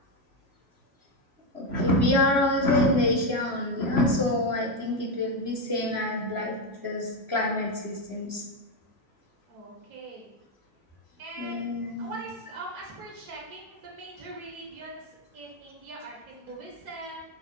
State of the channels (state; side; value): late; left; 3.0 ms